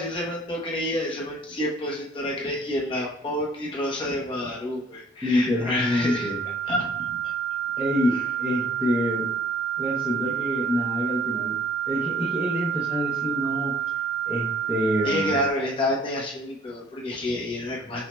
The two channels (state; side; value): normal; both; correlation 0.57